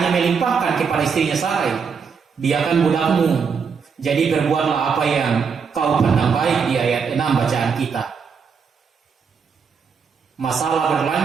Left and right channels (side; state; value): left; quieter; 6.0 dB